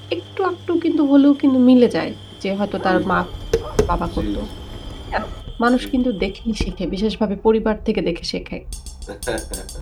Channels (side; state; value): both; identical; correlation 1.00